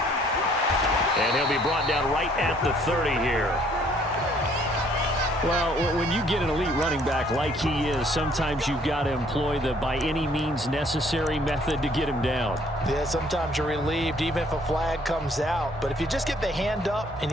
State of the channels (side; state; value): both; normal; correlation 0.62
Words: And he'll be brought down right at the 30 here. Well, when you get an elite running back like he is, sometimes you've got to employ the by any means necessary method to get him down. Yeah, sometimes you're relieved even if a flag comes out. But if you just get the hand up and